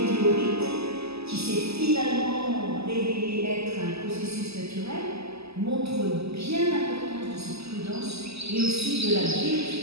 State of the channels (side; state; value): left; late; 0.79 ms